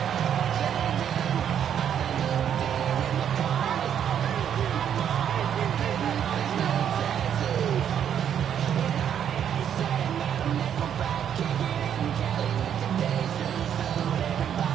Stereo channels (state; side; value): quieter; left; 9.0 dB